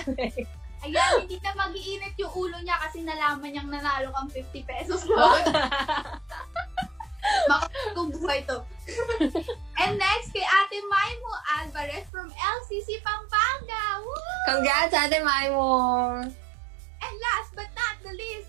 Ayan, hindi na mag-iinit yung ulo niya kasi nalaman niyang nanalo kang 50 pesos load. Makakong buhay to. And next, kay Ate Maimo Alvarez from LCC Pampanga. Woo! Congrats, Ate Maimo! And last but not the least,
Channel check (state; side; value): drops out; left; at 12.1 s